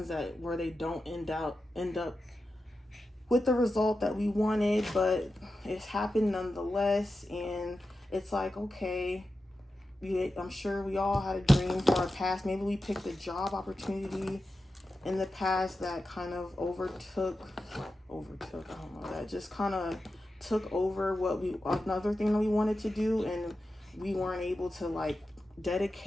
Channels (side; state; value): both; normal; correlation 0.91